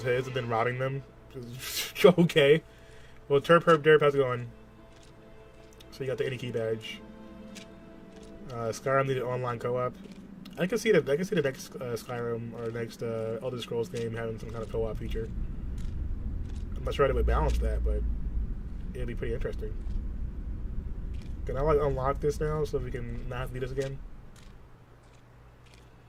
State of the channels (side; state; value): both; identical; correlation 1.00